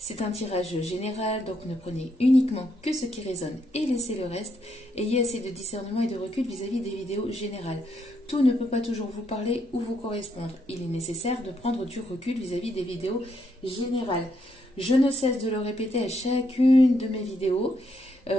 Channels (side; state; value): both; normal; correlation 0.76